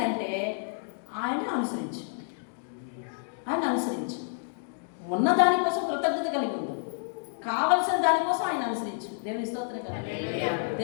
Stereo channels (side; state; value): right; silent; digital silence